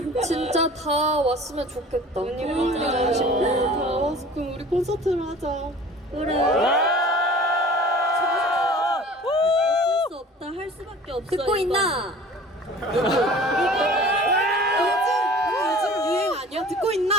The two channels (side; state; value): both; normal; correlation 0.44